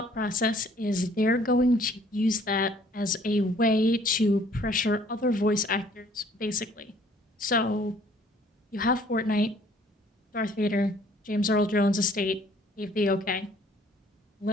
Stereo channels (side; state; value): both; normal; correlation 0.58